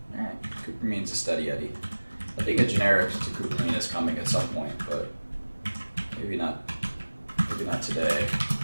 Alright, Cupramine's a steady Eddie. I think a generic to Cupramine is coming at some point, but maybe not today,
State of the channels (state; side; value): inverted; both; correlation -1.00